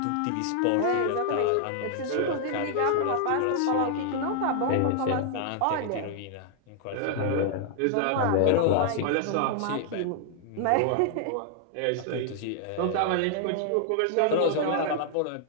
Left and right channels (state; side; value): different; both; correlation 0.00